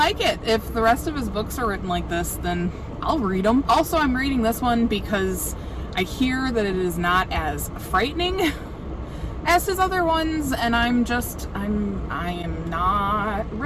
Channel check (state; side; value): identical; both; correlation 1.00